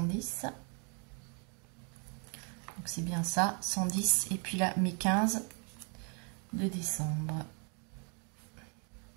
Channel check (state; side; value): quieter; left; 37.4 dB